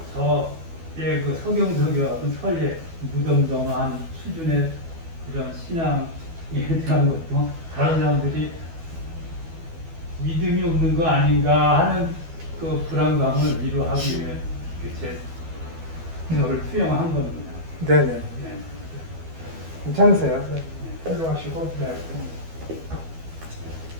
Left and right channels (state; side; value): late; left; 12 ms